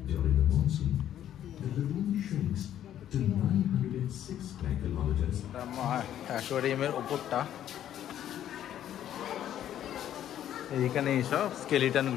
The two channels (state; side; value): quieter; right; 11.1 dB